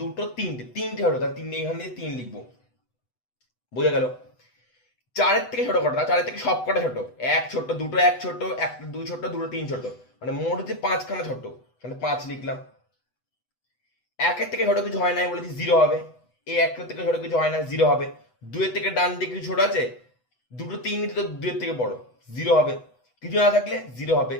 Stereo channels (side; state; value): right; late; 8.0 ms